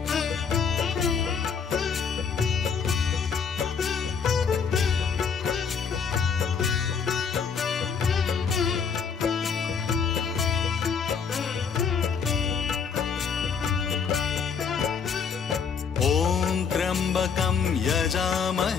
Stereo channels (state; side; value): quieter; right; 6.3 dB